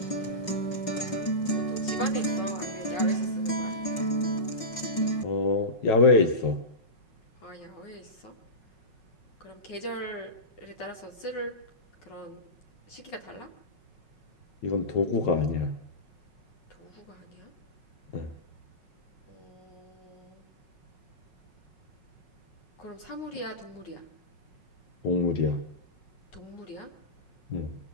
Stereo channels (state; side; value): late; right; 5.6 ms